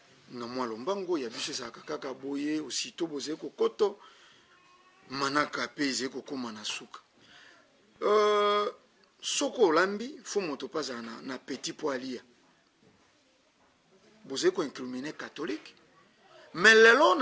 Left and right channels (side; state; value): both; identical; correlation 1.00